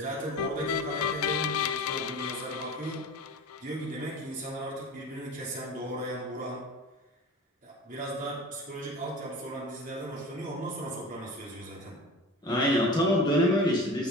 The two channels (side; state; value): both; normal; correlation 0.35